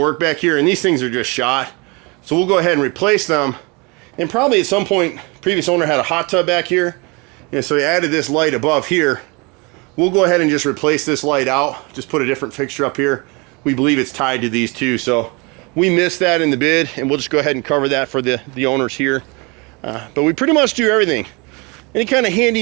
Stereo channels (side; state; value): left; quieter; 28.6 dB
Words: back here, and these things are just shot. So we'll go ahead and replace them. And probably at some point, previous owner had a hot tub back here, and so he added this light above here. We'll go ahead and just replace this light out, just put a different fixture up here. We believe it's tied to these two, so we missed that in the bid, and we'll just go ahead and cover that for the owners here. But we pretty much do everything. Any kind of